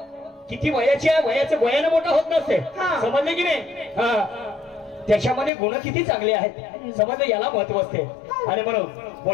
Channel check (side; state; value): right; drops out; at 5.5 s